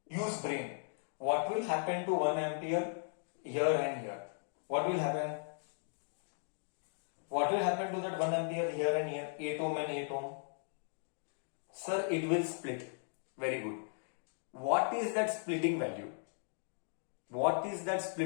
Use brain. What will happen to 1 ampere here and here? What will happen? What will happen to that 1 ampere here and here? 8 ohm and 8 ohm. Sir, it will split. Very good. What is that splitting value?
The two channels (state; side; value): silent; right; digital silence